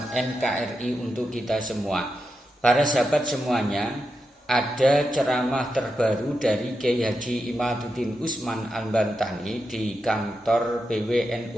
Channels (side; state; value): both; normal; correlation 0.87